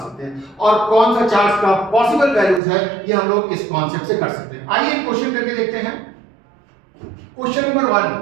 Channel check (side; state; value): left; drops out; at 2.6 s